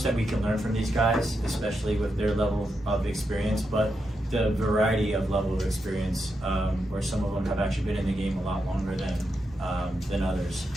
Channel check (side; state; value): both; normal; correlation 0.85